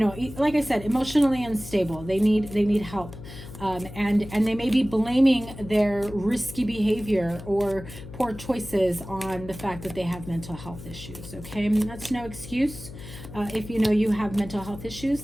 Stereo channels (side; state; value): left; noise; hum, 14 dB below the sound